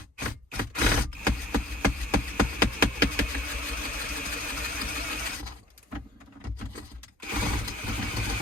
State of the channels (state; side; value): normal; both; correlation 0.51